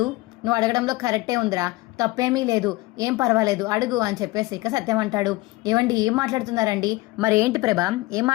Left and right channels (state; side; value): quieter; right; 20.7 dB